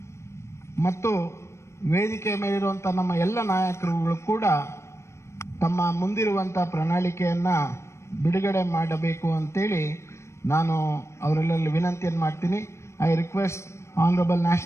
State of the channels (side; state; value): right; late; 0.13 ms